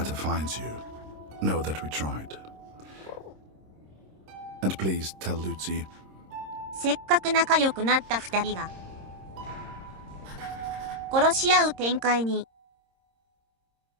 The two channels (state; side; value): late; left; 26 ms